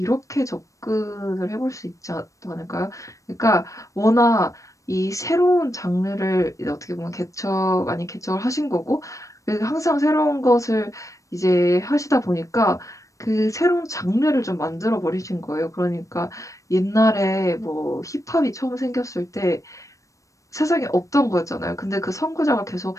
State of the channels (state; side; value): late; right; 0.16 ms